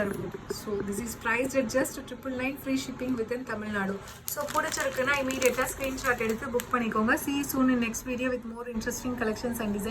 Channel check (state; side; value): identical; both; correlation 1.00